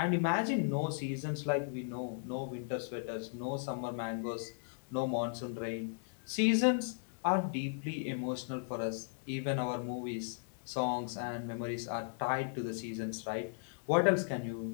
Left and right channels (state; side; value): silent; right; 54 dB below the other